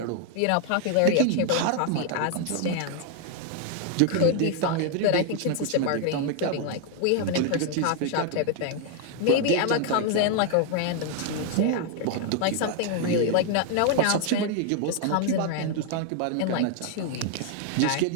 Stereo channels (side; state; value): both; different; correlation 0.00